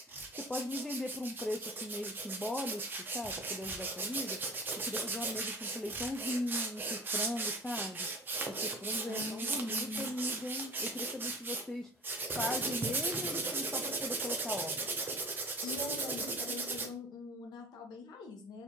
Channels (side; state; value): both; normal; correlation 0.39